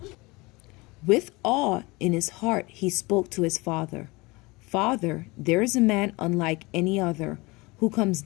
With awe in his heart he spoke to his father. "Father, there is a man unlike any other, who comes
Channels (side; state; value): right; quieter; 24.0 dB